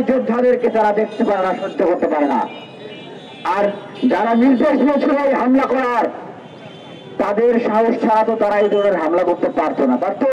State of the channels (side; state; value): both; identical; correlation 1.00